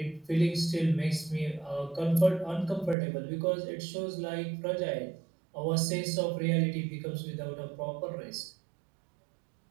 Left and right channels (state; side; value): drops out; left; at 3.0 s